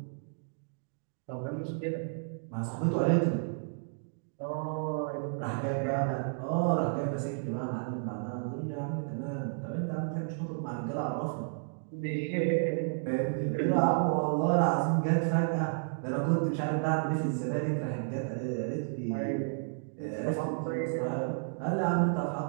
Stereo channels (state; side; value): silent; left; digital silence